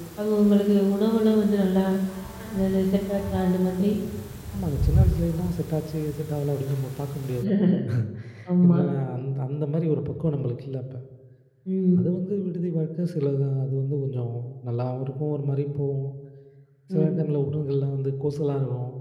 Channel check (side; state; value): both; identical; correlation 1.00